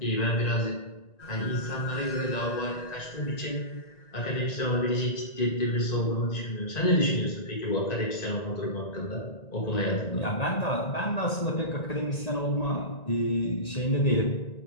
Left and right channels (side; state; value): right; late; 1.9 ms